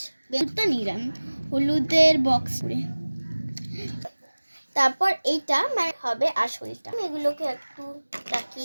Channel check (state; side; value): inverted; both; correlation -1.00